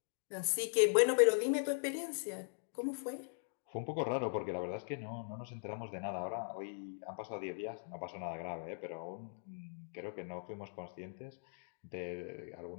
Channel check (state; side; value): silent; right; digital silence